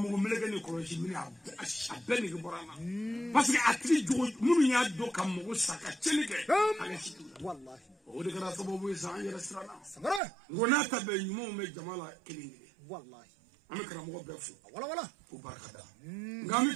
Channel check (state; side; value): drops out; left; at 10.2 s